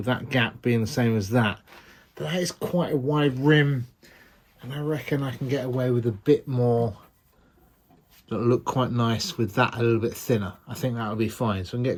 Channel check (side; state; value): both; identical; correlation 1.00